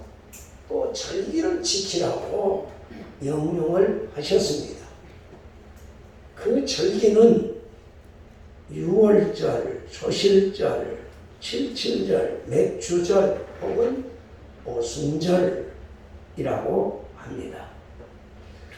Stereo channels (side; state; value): both; identical; correlation 1.00